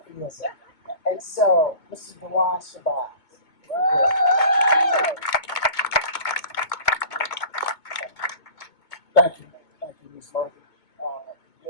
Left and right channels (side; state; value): right; late; 2.2 ms